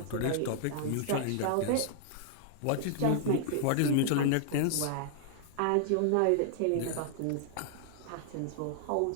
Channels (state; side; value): different; both; correlation -0.01